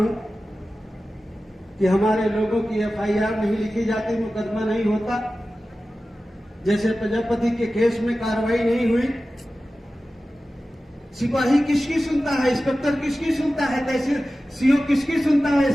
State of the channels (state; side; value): normal; both; correlation 0.95